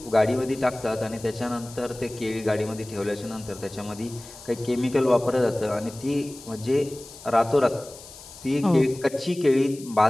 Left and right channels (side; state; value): left; noise; hiss, 18 dB below the sound